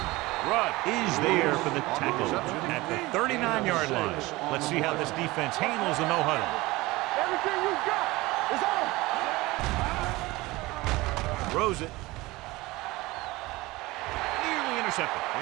Rudd is there for the tackle at the 39-yard line. Let's see how this defense handles the no-huddle. Everything you got is on. Throws it. Nearly intercepted.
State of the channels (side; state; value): left; quieter; 20.7 dB